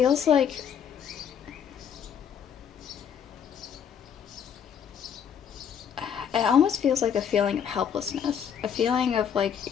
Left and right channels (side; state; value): right; quieter; 8.1 dB